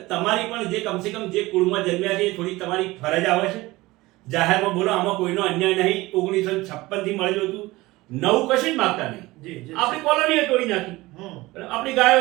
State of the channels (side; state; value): left; quieter; 19.9 dB